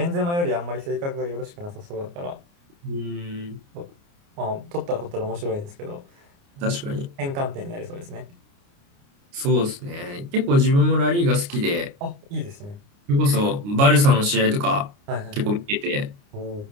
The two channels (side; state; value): left; late; 29 ms